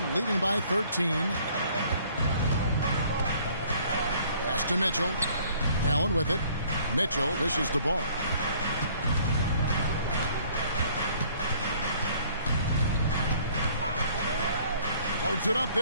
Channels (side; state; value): both; inverted; correlation -0.58